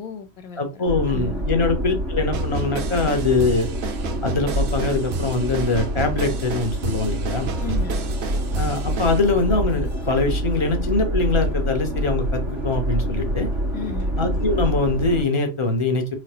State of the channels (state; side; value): late; left; 3.0 ms